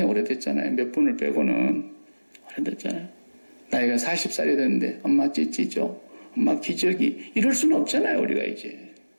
오래됐잖아요. 몇 분을 빼고는 오래됐잖아요. 나이가 40살이 됐는데 엄마 찌찌죠. 엄마 기저귀. 이럴 수는 없잖아요. 우리가 이제.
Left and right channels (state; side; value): inverted; both; correlation -1.00